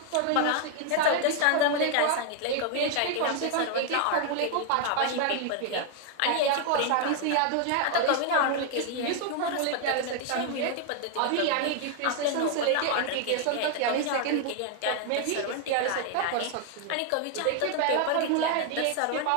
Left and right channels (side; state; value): both; different; correlation 0.00